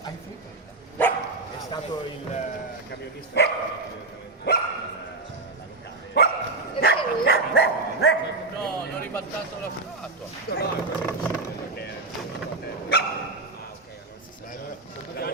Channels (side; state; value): left; quieter; 3.4 dB